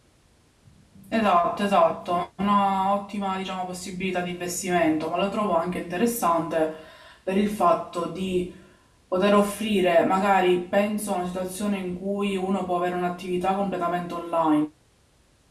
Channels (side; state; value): both; identical; correlation 1.00